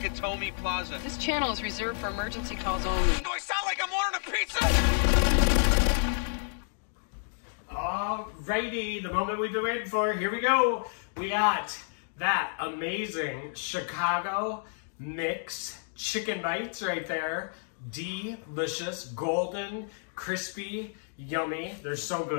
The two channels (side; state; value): right; silent; digital silence